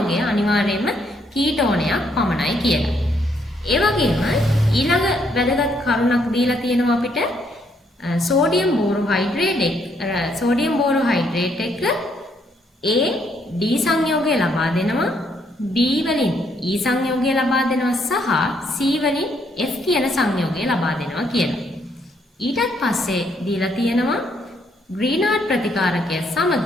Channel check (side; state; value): both; normal; correlation 0.71